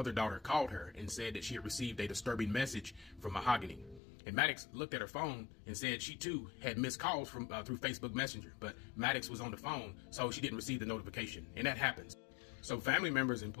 daughter called her and said that she had received a disturbing message from Mahogany. And Maddox looked at her phone and said she too had missed calls from through Facebook Messenger, but Maddox was on the phone, so she didn't receive the notification, and that happens. So family members and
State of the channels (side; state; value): right; drops out; at 4.0 s